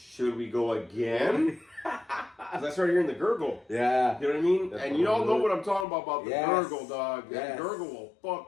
we go again?" Because I started hearing the gurgle. Yeah. You know what I mean? And you all know what I'm talking about the gurgle, dog. Yes. That gurgle will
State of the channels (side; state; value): right; drops out; at 5.9 s